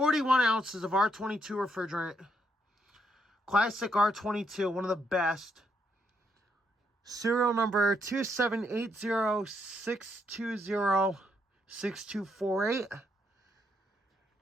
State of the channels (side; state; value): both; normal; correlation 0.76